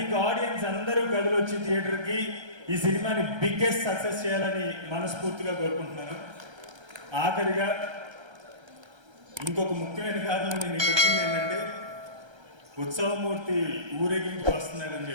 ఆడియన్స్ అందరూ కదిలొచ్చి థియేటర్కి ఈ సినిమాని బిగ్గెస్ట్ సక్సెస్ చేయాలని మనస్ఫూర్తిగా కోరుకుంటున్నాను. ఆఖరిగా ఇంకొక ముఖ్యమైన కారణం నేను ఇక్కడికి వచ్చింది ఏంటంటే, ఉత్సవమూర్తి ఊరేగింపు వస్తున్నాడని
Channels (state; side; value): late; left; 1.3 ms